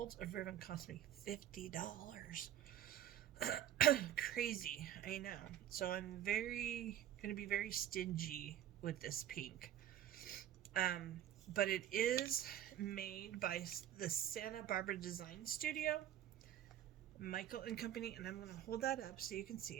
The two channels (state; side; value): quieter; left; 11.5 dB